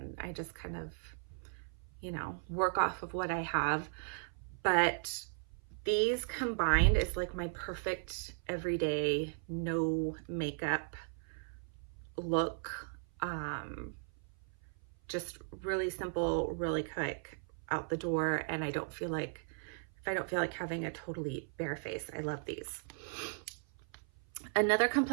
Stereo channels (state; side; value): silent; left; 53 dB below the other